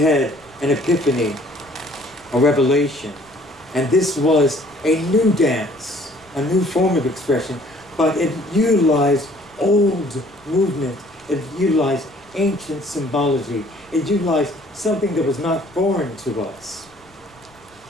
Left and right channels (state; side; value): noise; left; rumble, 30 dB below the sound